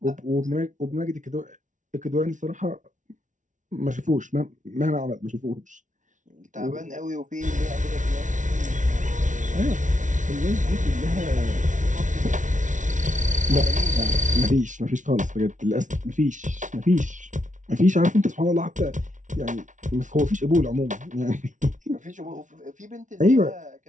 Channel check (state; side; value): late; left; 0.37 ms